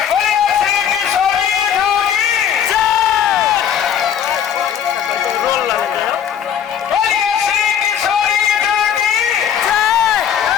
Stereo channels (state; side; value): quieter; right; 8.8 dB